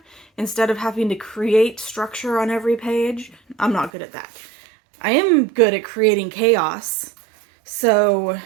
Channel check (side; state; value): left; drops out; at 3.9 s